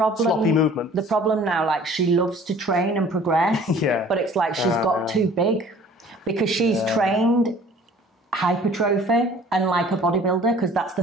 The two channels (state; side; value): normal; both; correlation 0.50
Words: Sloppy movement. The problem now, like, she loves to train and progress, but it's like she's got too big because she's trained hypertrophy and like a bodybuilder, because that's the